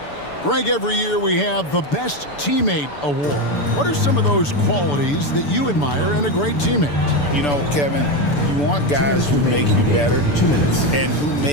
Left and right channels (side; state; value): right; late; 6.9 ms